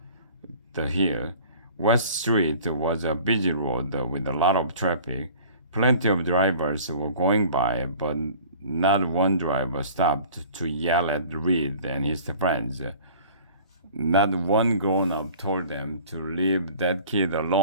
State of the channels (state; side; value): inverted; both; correlation -0.46